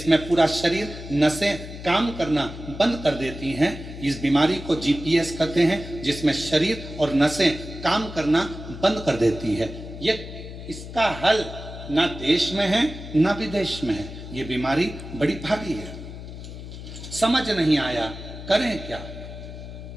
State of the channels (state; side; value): noise; left; hum, 11 dB below the sound